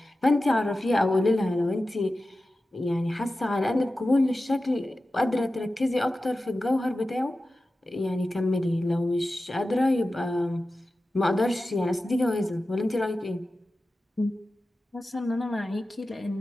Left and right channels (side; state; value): both; normal; correlation 0.94